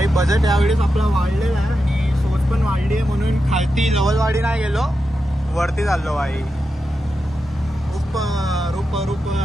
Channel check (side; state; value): both; normal; correlation 0.89